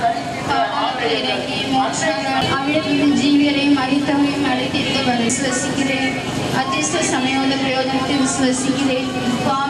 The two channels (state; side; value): identical; both; correlation 1.00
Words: ஜீவியரை மறித்தவரையும் அழைத்திருக்க விசுவசிக்கிறேன். அதிர்ஷ்ட சமயோத பிரயோஜனத்தை விசுவசிக்கிறேன்.